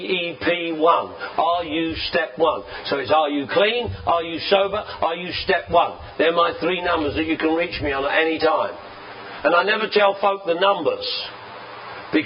Are you step 1? So it's, are you clean? Are you sober? Are you step 1? They're my 3 numbers that you can reach me on at any time. And I never tell folk the numbers,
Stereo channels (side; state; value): both; identical; correlation 1.00